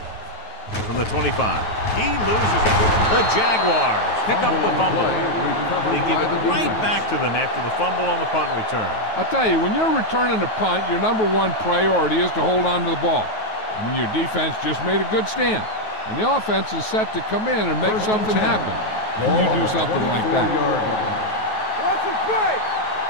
From the 25. He loses it. The Jaguars pick up the fumble. They give it right back to them after the fumble on the punt return. I'll tell you, when you're returning a punt, your #1 priority is to hold on to the ball. I mean, your defense just made a good stand. And the offense is set to come in and make something happen. And you do something like that. Watch the play.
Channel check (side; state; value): right; late; 9.3 ms